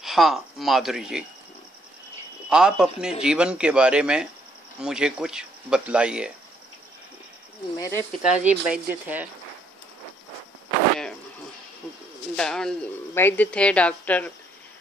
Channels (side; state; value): both; normal; correlation 0.70